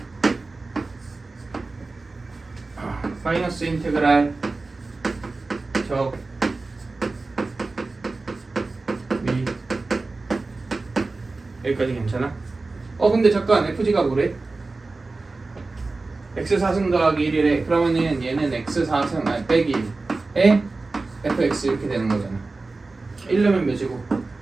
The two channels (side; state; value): left; quieter; 3.6 dB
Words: 마이너스 인테그랄 적 미 여기까지 괜찮아? 근데 잠깐 FG가 뭐래? x4승 더하기 1이래. 그러면은 얘는 x4승 빼기 1에 fx 이렇게 되는 거잖아. 1려면 몇이고?